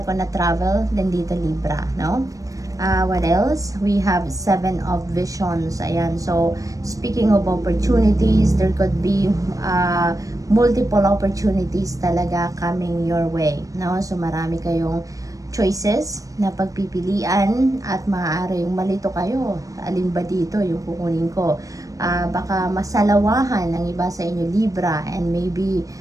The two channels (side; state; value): left; late; 0.16 ms